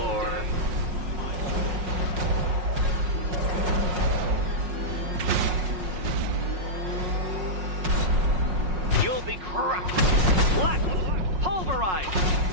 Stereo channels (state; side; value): late; left; 5.5 ms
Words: You'll be crushed, flattened, pulverized.